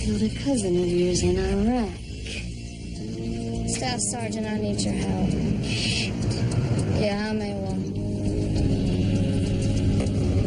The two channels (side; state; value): both; identical; correlation 1.00